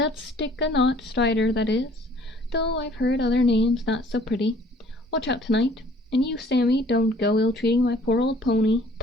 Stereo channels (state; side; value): normal; both; correlation 0.56